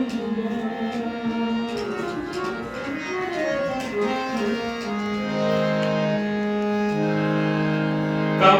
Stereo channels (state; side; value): identical; both; correlation 1.00